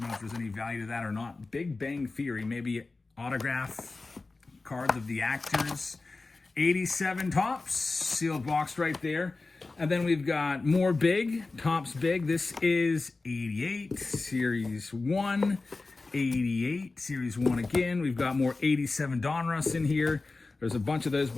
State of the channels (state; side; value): quieter; right; 3.6 dB